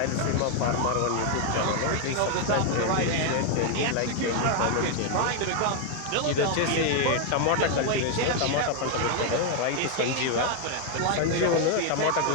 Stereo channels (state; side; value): different; both; correlation 0.01